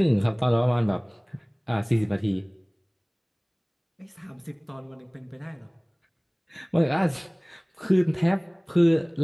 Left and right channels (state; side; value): identical; both; correlation 1.00